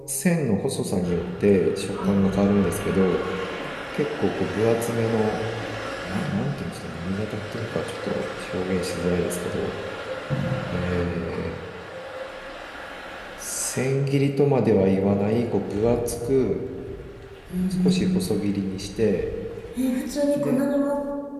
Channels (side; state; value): both; identical; correlation 1.00